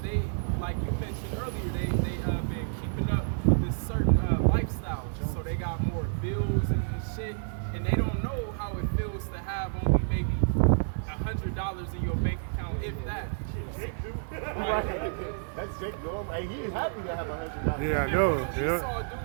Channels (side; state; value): left; silent; digital silence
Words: they, like you mentioned earlier, they been keeping up with this certain lifestyle. So they got more bills and shit, and they don't know how it feels to have only maybe $100 in your bank account, if that. Right. That's Jake Norman. Hey, he's happy to have $100. Yeah, I And know what it. we Yeah. saw